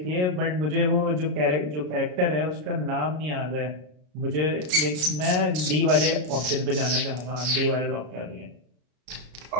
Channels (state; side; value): late; left; 33 ms